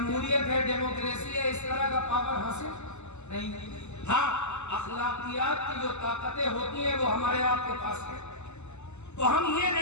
ہے, ڈیموکریسی ہے, اس طرح کا پاور حاصل نہیں. ہاں اخلاقیات کی جو طاقتیں ہوتی ہیں وہ ہمارے آپ کے پاس ہے. تو ہم یہ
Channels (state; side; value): late; right; 0.83 ms